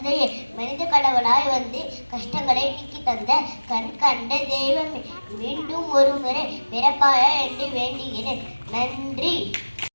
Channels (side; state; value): both; inverted; correlation -1.00